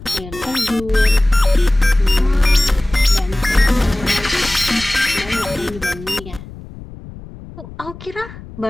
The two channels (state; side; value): noise; left; rumble, 16 dB below the sound